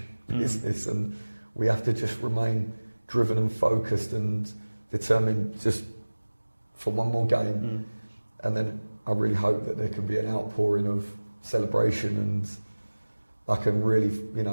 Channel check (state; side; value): inverted; both; correlation -1.00